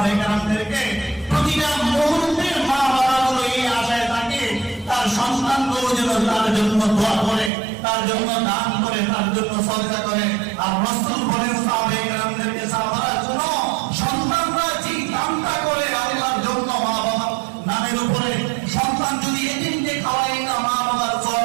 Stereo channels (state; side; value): drops out; left; at 7.5 s